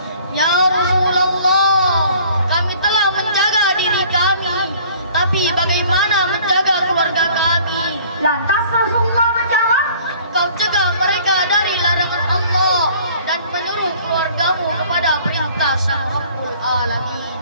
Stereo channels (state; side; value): inverted; both; correlation -0.53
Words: Ya Rasulullah, kami telah menjaga diri kami, tapi bagaimana menjaga keluarga kami? Lantas Rasulullah menjawab, Kau cegah mereka dari larangan Allah dan menyuruh keluargamu kepada perintah Sang Rabbul Alamin.